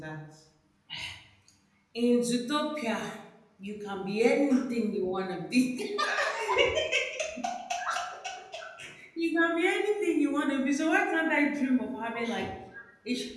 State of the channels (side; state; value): both; identical; correlation 1.00